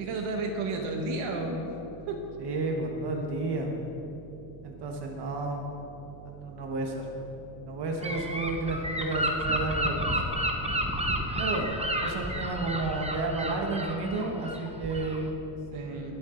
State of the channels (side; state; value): right; noise; hum, 16 dB below the sound